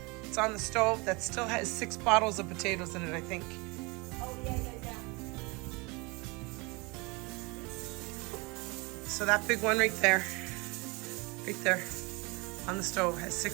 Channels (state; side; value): quieter; left; 27.1 dB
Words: It's on the stove that still has 6 bottles of potatoes in it, I think. Oh, yeah. So that big one right there on the stove has